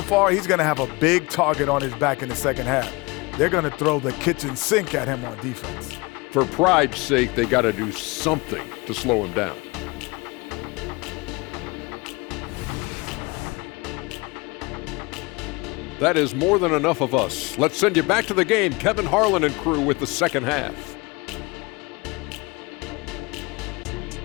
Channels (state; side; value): quieter; right; 25.7 dB